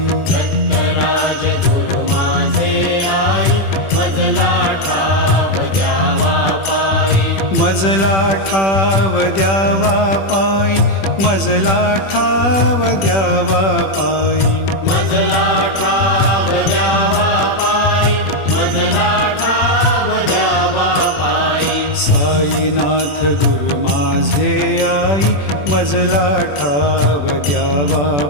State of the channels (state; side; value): late; right; 21 ms